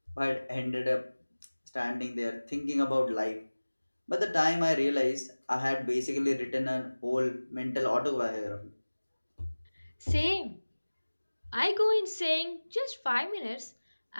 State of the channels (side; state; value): both; inverted; correlation -1.00